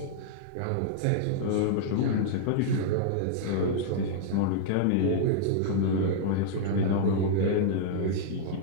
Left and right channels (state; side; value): different; both; correlation -0.01